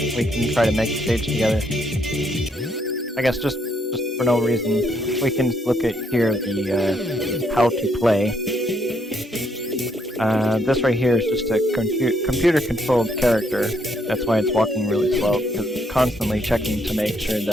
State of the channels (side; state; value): both; normal; correlation 0.73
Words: can try to make the stage together. I guess just for no reason, we can look at here the how to play. This right here is just a computer-controlled character. That's why it's walking really slow, because it's constantly checking to make sure